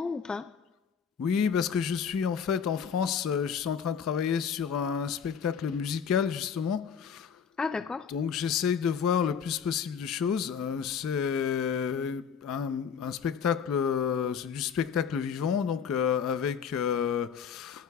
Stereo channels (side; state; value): right; quieter; 7.0 dB